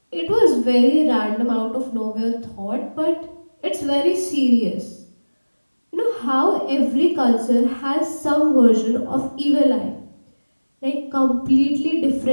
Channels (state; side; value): inverted; both; correlation -1.00